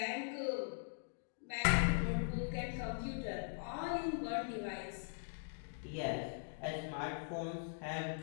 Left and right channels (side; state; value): right; silent; digital silence